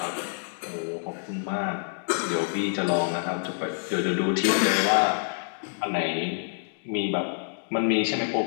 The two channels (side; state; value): right; silent; digital silence